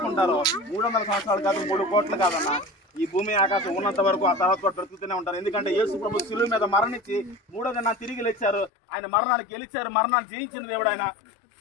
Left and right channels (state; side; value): drops out; right; at 8.7 s